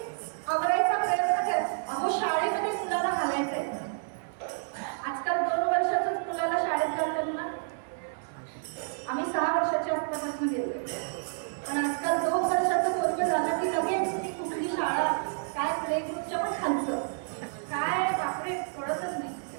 आवरायचा प्रयत्न कर, अहो शाळेमध्ये मुलाला घालायचंय. आजकाल 2 वर्षाच्याच मुलाला शाळेत घालतात ना. आम्ही 6 वर्षाच्या आसपासून गेलोय, पण आजकाल 2 वर्षाचं वर्ष झालं की लगेच कुठली शाळा, काय प्ले ग्रुपच्या पण खालचं काय बापरे कळतच नाही.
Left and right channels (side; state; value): left; silent; digital silence